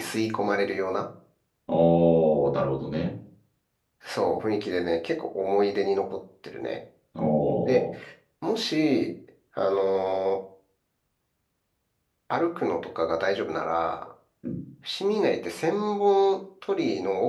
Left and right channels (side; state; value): both; identical; correlation 1.00